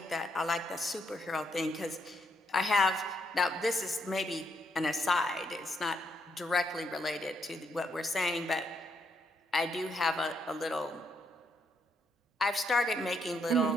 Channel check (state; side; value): normal; both; correlation 0.75